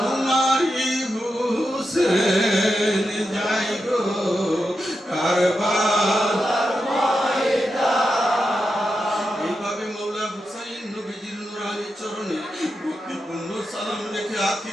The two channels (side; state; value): both; normal; correlation 0.88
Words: হুসেন যাই গো কারবালার ময়দান। এইভাবে মৌলা হুসাইন নবীজির নূরানি চরণে ভক্তিপূর্ণ সালাম রেখে